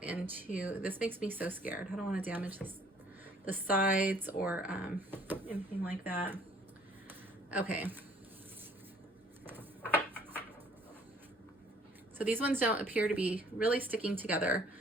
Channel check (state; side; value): normal; both; correlation 0.58